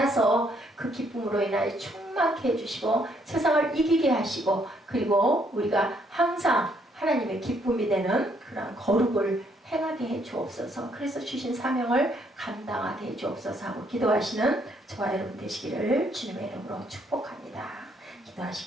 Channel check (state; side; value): normal; both; correlation 0.70